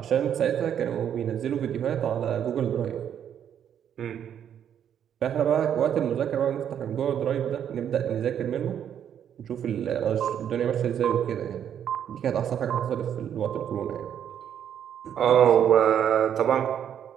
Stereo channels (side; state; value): left; quieter; 9.2 dB